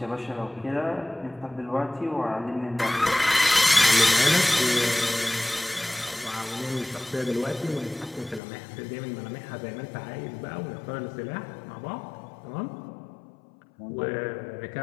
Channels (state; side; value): drops out; right; at 8.4 s